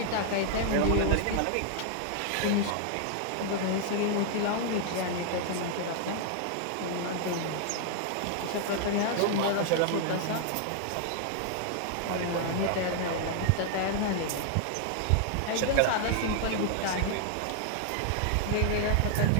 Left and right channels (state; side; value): different; both; correlation 0.00